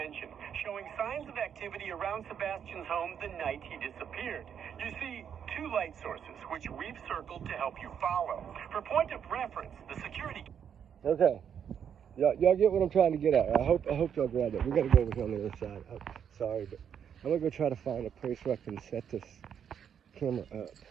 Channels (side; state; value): left; quieter; 8.2 dB